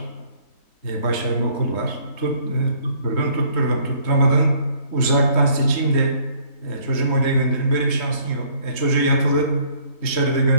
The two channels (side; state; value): right; late; 3.2 ms